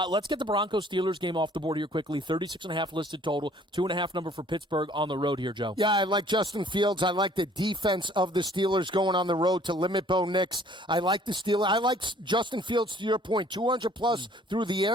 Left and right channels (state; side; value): normal; both; correlation 0.57